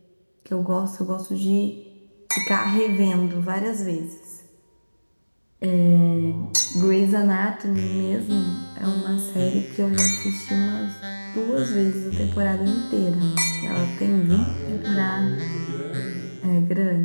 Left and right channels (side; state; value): both; inverted; correlation -1.00